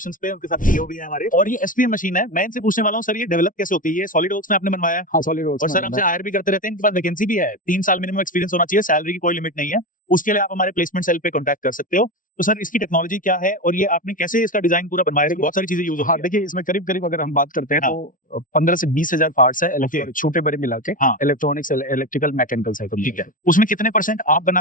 पे, उनके साथ सीईओ भी है हमारे। और ये एसपीएम मशीन है। मैं इनसे पूछने वाला हूँ सर, ये डेवलप कैसे होती है? ये सॉलिड वर्क्स में आपने बनवाया? हाँ, सॉलिड वर्क्स। और सर हमसे हायर भी करते रहते हैं, इनके पास वैकेंसी भी है। 3 साल मिनिमम एक्सपीरियंस होना चाहिए, सैलरी की कोई लिमिट नहीं है। उसके लिए आप हमारे प्लेसमेंट सेल पे कॉन्टैक्ट कर सकते हो। तो सर इसकी टेक्नोलॉजी क्या है और ये आपने कैसे इसका डिजाइन पूरा बनवाया? बहुत सारी चीजें यूज होती है। हाँ, देखिए इसमें करीब करीब अगर हम बात करते हैं हाँ। तो 15 से 20 हजार पार्ट्स है, छोटे बड़े मिला के। हाँ। इलेक्ट्रॉनिक्स, इलेक्ट्रिकल, मैकेनिकल है। ठीक है, उसमें कितने % आप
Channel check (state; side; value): late; right; 0.38 ms